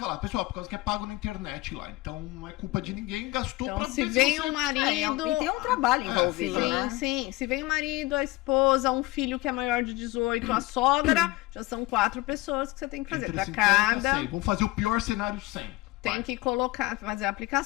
pessoal, por causa que é pago na internet lá. Então não é culpa de ninguém, gastou Então, pra se ver vem você... um marido. E tem um trabalho envolvido, Sim, né? sim. Se vem o marido, a esposa, um filho que é maior de 18, a sogra, já são 4 pessoas que você tem que fazer. Entre Pra 50 e cada. 100. Vamos fazer o pior cenário 100. Tem que colocar, fazer a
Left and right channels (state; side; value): quieter; right; 20.3 dB